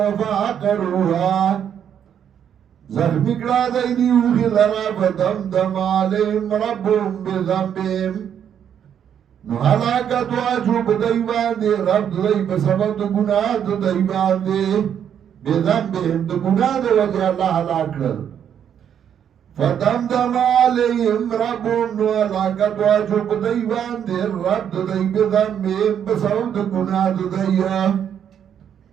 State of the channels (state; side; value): quieter; left; 8.9 dB